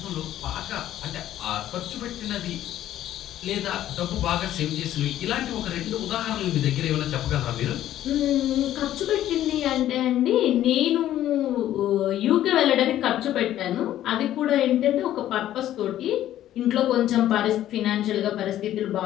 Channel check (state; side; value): quieter; right; 12.6 dB